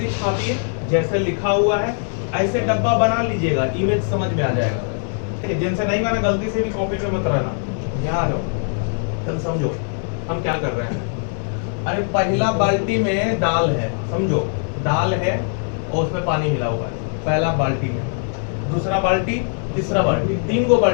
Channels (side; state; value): right; silent; 62 dB below the other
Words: छापिए, जैसे लिखा हुआ है ऐसे डब्बा बना लीजिएगा, इमेज समझ में आ जाएगा। ठीक है, जिनसे नहीं बना गलती से भी कॉपी पे मत रहना। यहाँ आ जाओ, चल समझो हम क्या कर रहे हैं। अरे पहला बाल्टी में दाल है, समझो दाल है और उसमें पानी मिला हुआ है पहला बाल्टी में। दूसरा बाल्टी, तीसरा बाल्टी, 3 गो